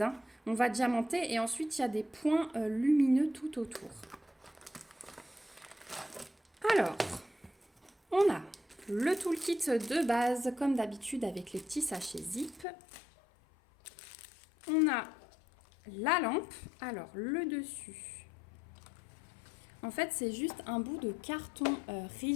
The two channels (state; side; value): drops out; right; at 12.7 s